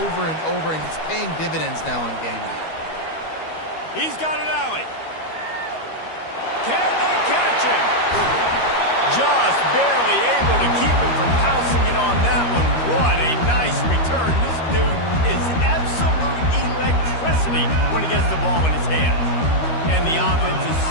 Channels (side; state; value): right; late; 13 ms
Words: over and over, and it's paying dividends now on game day. He's got an alley. Can they catch him? Just barely able to keep him from pouncing it on that one. What a nice return. This dude is absolute electricity when he gets the ball in his hands. And the offense is